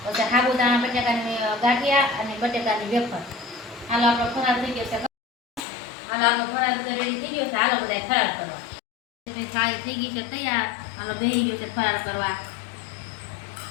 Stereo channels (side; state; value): right; drops out; at 5.6 s